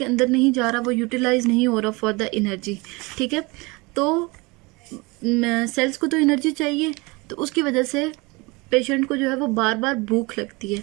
अंदर नहीं जा रहा, वो यूटिलाइज नहीं हो रहा फॉर द एनर्जी, ठीक है। तो सेल्स को तो एनर्जी चाहिए तो उसकी वजह से पेशेंट को जो है वो बार बार भूख लगती है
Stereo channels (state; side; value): quieter; left; 25.5 dB